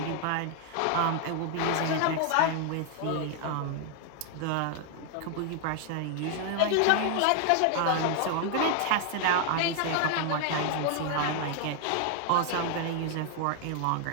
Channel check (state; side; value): different; both; correlation 0.00